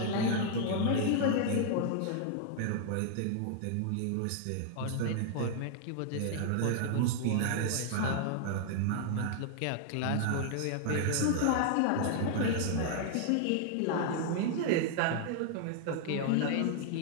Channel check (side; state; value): both; different; correlation -0.01